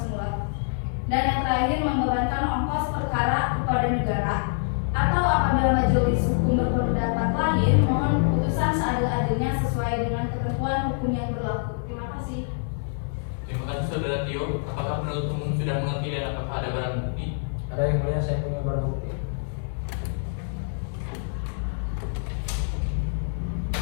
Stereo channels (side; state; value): right; silent; digital silence